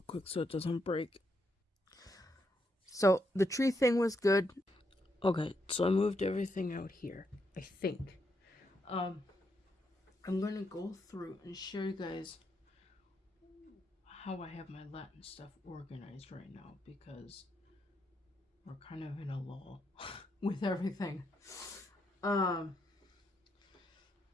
quick so it doesn't break. So the tree thing was good. Okay, so I moved everything out here, I think. I'm gonna go through and show you guys how I have my Latin stuff organized right now, because we're kind of in a lull with everything.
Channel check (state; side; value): normal; both; correlation 0.79